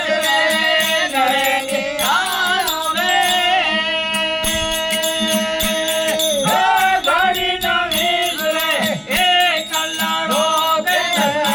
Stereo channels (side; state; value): both; identical; correlation 1.00